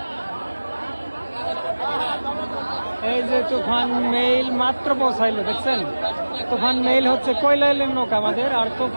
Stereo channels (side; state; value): both; inverted; correlation -1.00